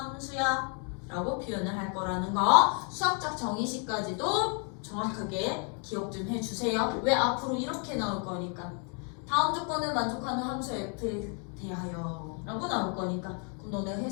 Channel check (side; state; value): right; quieter; 39.3 dB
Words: 라고 표현을 할 거라는 거. 수학적 정의식까지도 정확하게 기억 좀 해주세요. 왜? 앞으로 이렇게 나올 거니까. 다음 조건을 만족하는 함수 F에 대하여 라고 나올 거니까. 그럼 너네